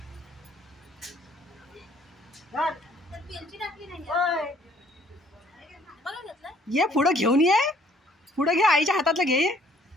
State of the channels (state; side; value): normal; both; correlation 0.61